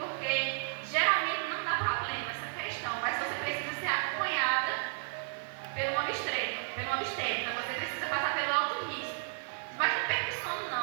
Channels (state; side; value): silent; left; digital silence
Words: geralmente não dá problema essa questão, mas você precisa ser acompanhada pelo obstetra, você precisa passar pelo alto risco. Mas não perca o sono